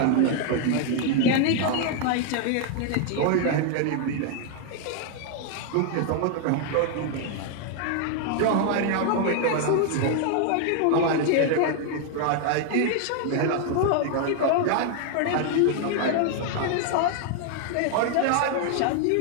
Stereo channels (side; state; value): both; different; correlation 0.00